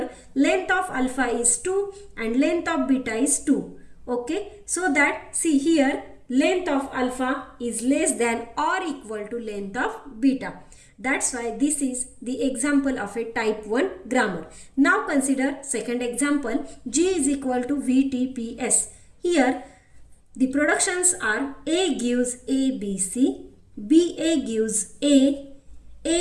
length of alpha is 2 and length of beta is 2. Okay, so that see here length of alpha is less than or equal to length of beta. That's why this is the example of a type 1 grammar. Now consider second example, G is equal to VTPS. Here the productions are A gives ABC, BA gives A,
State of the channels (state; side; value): identical; both; correlation 1.00